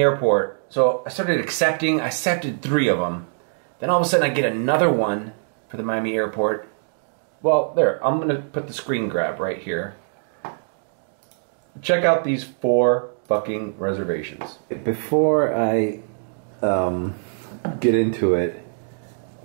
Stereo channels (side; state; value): left; silent; digital silence